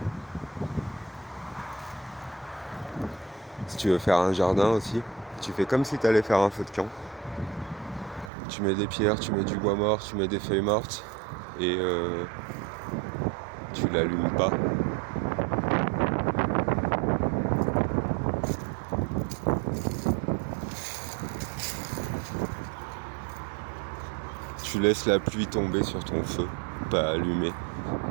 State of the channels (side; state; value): left; drops out; at 8.3 s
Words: Si tu veux faire un jardin aussi, tu fais comme si tu allais faire un feu de camp. Tu mets des pierres, tu mets du bois mort, tu mets des feuilles mortes et tu l'allumes pas. Tu laisses la pluie tomber sur ton feu, pas allumé.